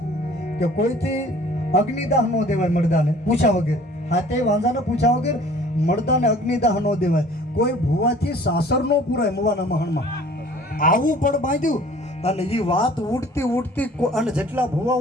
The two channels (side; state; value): both; normal; correlation 0.51